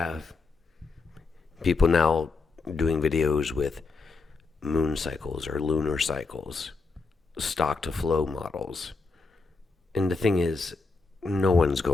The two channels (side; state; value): right; quieter; 4.1 dB